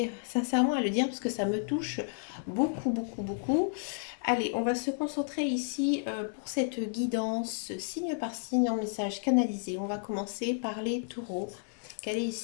sincèrement à le dire parce que ça me touche beaucoup, beaucoup, beaucoup. Allez, on va se concentrer ici pour cette guidance signe par signe en message canalisé. On va commencer par les taureaux. Quel est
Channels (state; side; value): silent; right; digital silence